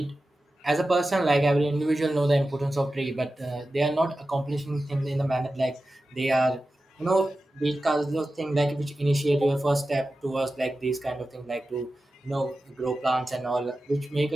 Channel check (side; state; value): both; normal; correlation 0.93